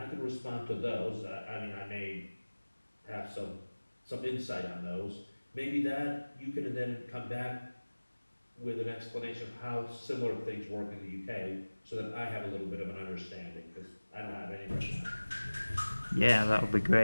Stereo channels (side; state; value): both; inverted; correlation -1.00